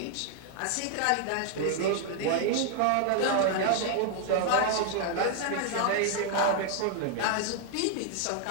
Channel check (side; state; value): both; different; correlation 0.00